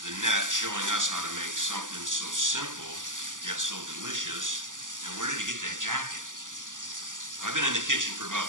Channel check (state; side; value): late; left; 0.88 ms